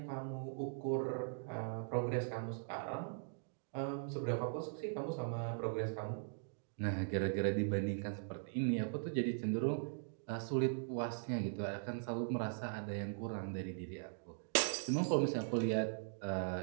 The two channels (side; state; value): left; silent; digital silence